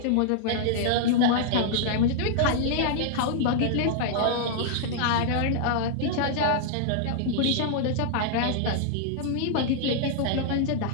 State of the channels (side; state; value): both; different; correlation -0.01